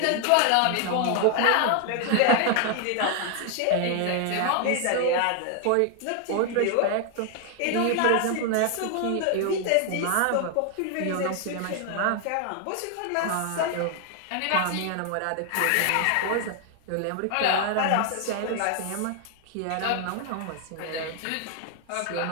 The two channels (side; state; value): both; different; correlation 0.00